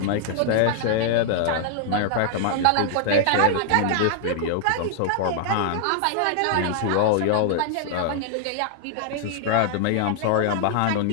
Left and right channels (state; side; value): different; both; correlation -0.01